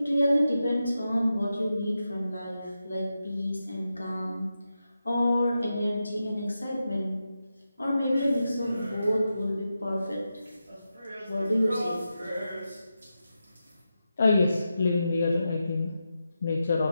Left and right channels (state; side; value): inverted; both; correlation -0.89